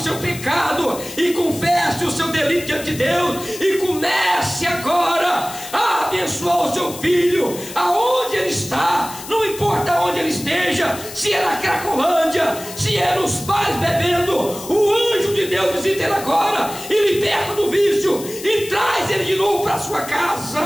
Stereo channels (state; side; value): noise; left; hiss, 13 dB below the sound